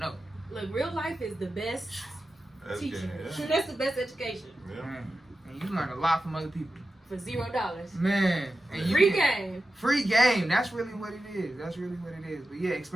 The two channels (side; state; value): both; normal; correlation 0.92